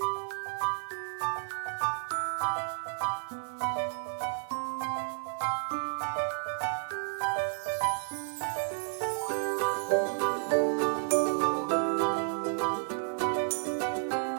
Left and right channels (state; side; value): silent; left; digital silence